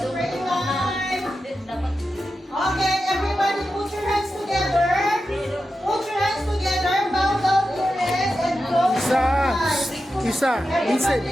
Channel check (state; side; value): normal; both; correlation 0.90